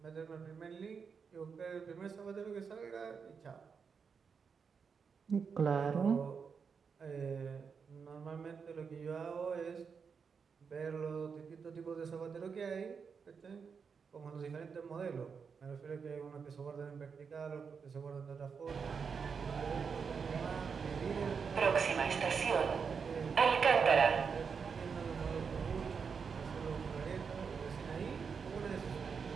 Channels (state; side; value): quieter; left; 5.9 dB